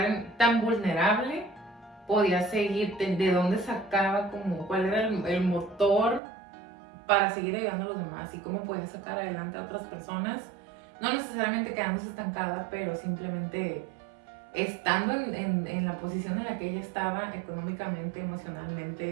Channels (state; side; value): drops out; left; at 6.2 s